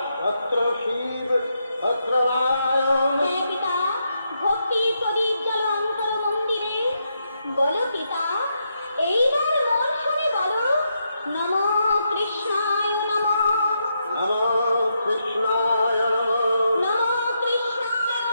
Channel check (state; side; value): inverted; both; correlation -0.81